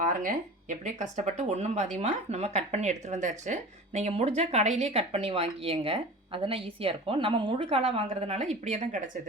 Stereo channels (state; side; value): normal; both; correlation 0.37